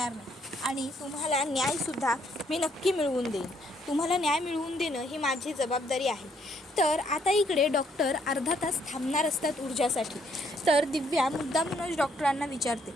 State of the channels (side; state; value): both; normal; correlation 0.69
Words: नाही आणि तुम्हाला न्यायसुद्धा मी नक्की मिळवून देईन. तुम्हाला न्याय मिळवून देणं ही माझी जबाबदारी आहे. तर आता इकडे डॉक्टर अर्धा तास थांबणार असतात ऊर्जासाठी. तर दिव्या मुद्दामूनच डॉक्टरांना विचारते